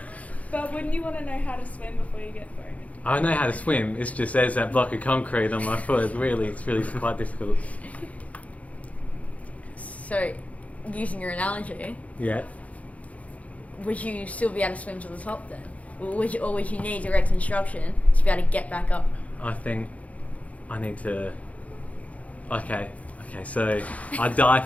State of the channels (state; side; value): late; right; 0.068 ms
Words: But wouldn't you want to know how to swim before you get thrown into I know how to swim, it's just there's that block of concrete on my foot. It's really quite difficult. So, using your analogy, Yeah. would you still be able to swim to the top then? Or would you need direct instruction to be able to get back up? I think I need to. Okay, so I die